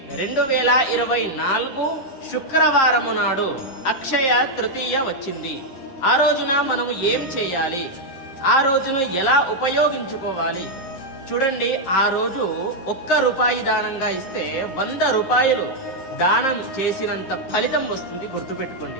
2024 శుక్రవారము నాడు అక్షయ తృతీయ వచ్చింది. ఆ రోజున మనము ఏం చేయాలి, ఆ రోజును ఎలా ఉపయోగించుకోవాలి? చూడండి, ఆ రోజు ₹1 దానంగా ఇస్తే 100 రూపాయలు దానం చేసినంత ఫలితం వస్తుంది,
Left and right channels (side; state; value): right; late; 11 ms